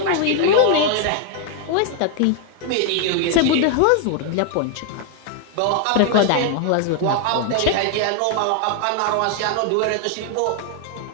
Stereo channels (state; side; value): different; both; correlation 0.00